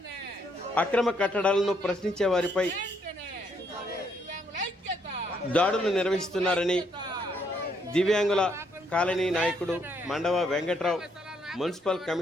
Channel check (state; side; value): normal; both; correlation 0.72